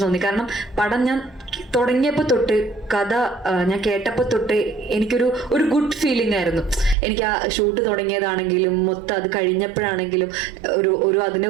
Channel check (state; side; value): drops out; left; at 7.0 s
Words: തോന്നി. കാരണം പടം ഞാൻ തുടങ്ങിയപ്പോൾ തൊട്ട്, കഥ ഞാൻ കേട്ടപ്പോൾ തൊട്ട് എനിക്കൊരു ഗുഡ് ഫീലിംഗ് ആയിരുന്നു. എനിക്ക് ആ ഷൂട്ട് തുടങ്ങിയതാണെങ്കിലും മൊത്തം അത് കഴിഞ്ഞപ്പോഴാണെങ്കിലും ഒരു അതിന്റെ